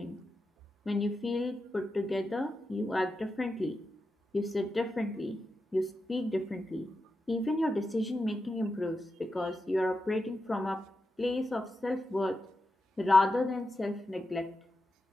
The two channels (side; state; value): both; normal; correlation 0.89